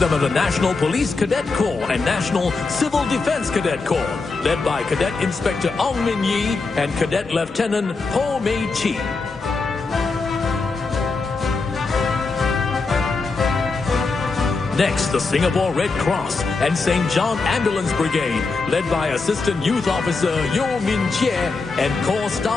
are the National Police Cadet Corps and National Civil Defence Cadet Corps, led by Cadet Inspector Ong Min Yi and Cadet Lieutenant Ho Mei Chi. Next, the Singapore Red Cross and St. John Ambulance Brigade, led by Assistant Youth Officer Yo Min Chie and Corps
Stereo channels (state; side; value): quieter; right; 4.0 dB